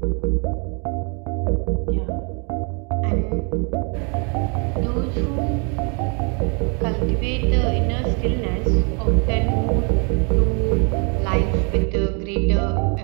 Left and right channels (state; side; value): quieter; left; 36.3 dB